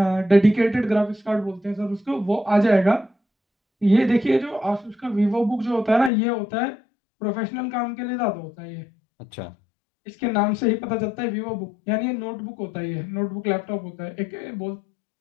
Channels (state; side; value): drops out; right; at 6.1 s